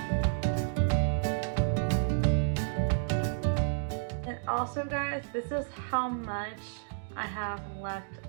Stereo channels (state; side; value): silent; left; digital silence